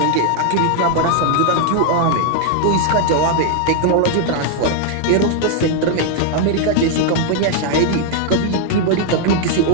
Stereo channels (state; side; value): different; both; correlation 0.00